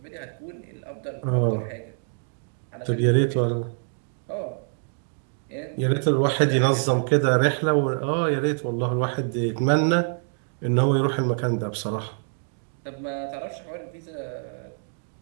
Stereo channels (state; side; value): silent; left; 61 dB below the other